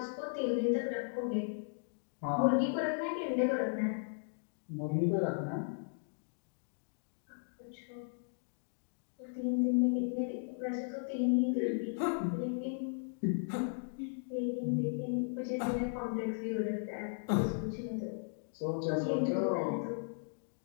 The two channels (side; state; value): right; silent; digital silence